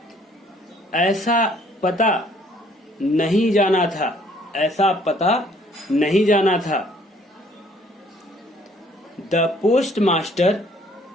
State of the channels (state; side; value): normal; both; correlation 0.61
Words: ऐसा पता नहीं जाना था, ऐसा पता नहीं जाना था। द पोस्ट मास्टर,